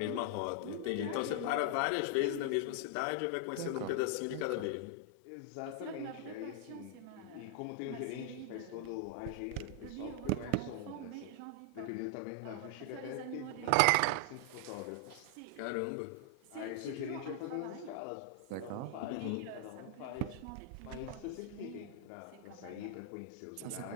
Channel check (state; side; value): different; both; correlation 0.00